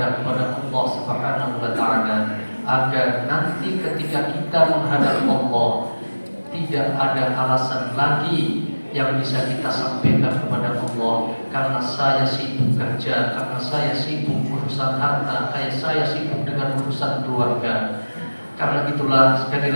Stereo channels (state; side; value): inverted; both; correlation -1.00